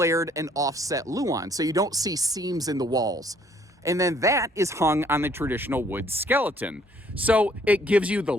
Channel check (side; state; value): both; normal; correlation 0.63